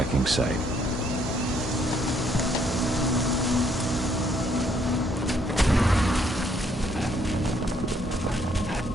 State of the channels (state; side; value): normal; both; correlation 0.68